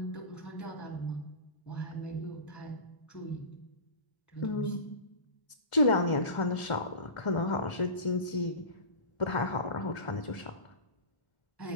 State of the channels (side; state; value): right; late; 1.7 ms